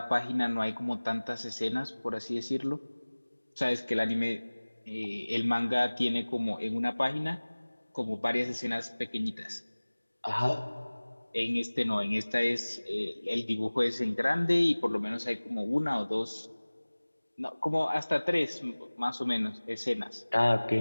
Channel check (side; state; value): both; inverted; correlation -1.00